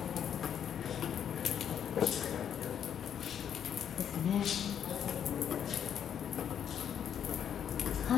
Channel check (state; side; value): quieter; right; 8.9 dB